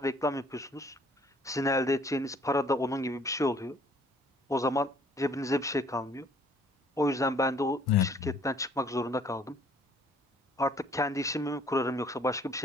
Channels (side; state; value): both; normal; correlation 0.59